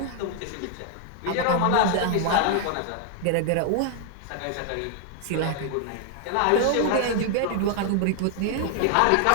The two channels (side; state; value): both; different; correlation 0.00